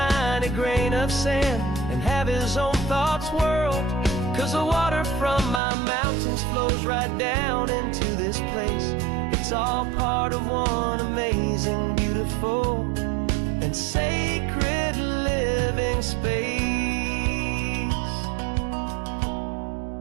grain of sand and have his own thoughts whirled. 'Cause the water from my mountains flows right down into this place. It's all part of one amazing, beautiful, and sacred living space.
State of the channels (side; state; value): left; drops out; at 5.6 s